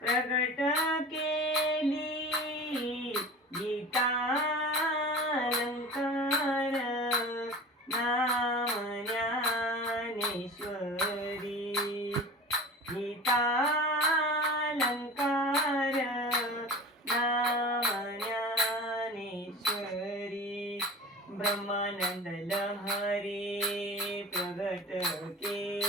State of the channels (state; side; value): normal; both; correlation 0.37